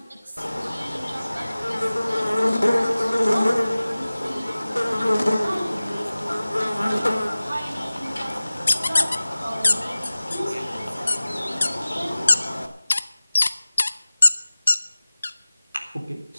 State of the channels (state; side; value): inverted; both; correlation -0.98